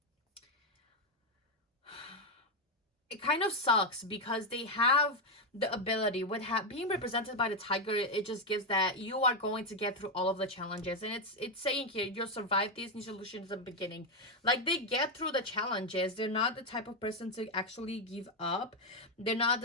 sucks because they have the ability with being represented by the tiger. It just gives that you are going to get through all of the challenges, and it's saying here you'll survive these new solutions at the beginning. Like they get through the challenges. They're not the type of person to actually give up. They're not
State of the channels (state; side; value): normal; both; correlation 0.05